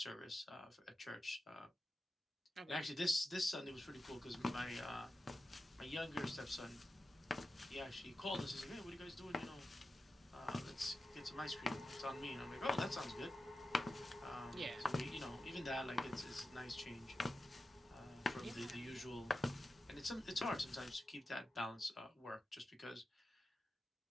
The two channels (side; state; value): both; normal; correlation 0.91